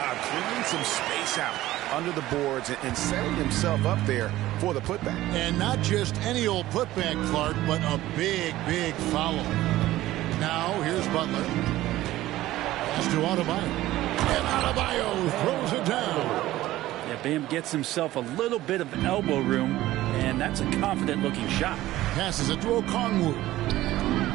clearing some space out under the boards and setting himself up there for the putback. And not just any old putback, Clark, but a big, big foul. Now, here's Butler. Pass to Adebayo. And Adebayo throws it down. Yeah, Bam gets himself a little bit of elbow room, and that's a confident-looking shot. Passes it to Okongwu.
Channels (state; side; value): quieter; left; 15.7 dB